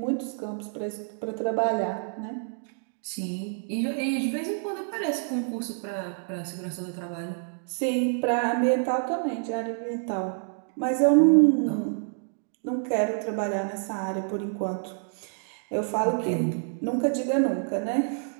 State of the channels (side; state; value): left; silent; digital silence